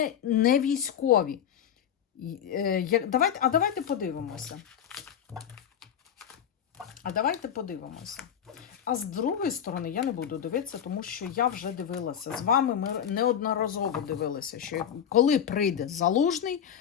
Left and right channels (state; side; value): quieter; right; 9.0 dB